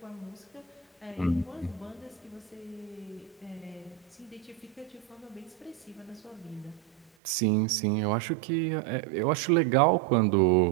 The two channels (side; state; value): left; drops out; at 7.1 s